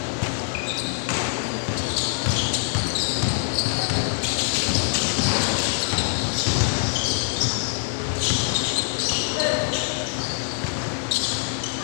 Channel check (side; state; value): right; silent; 57 dB below the other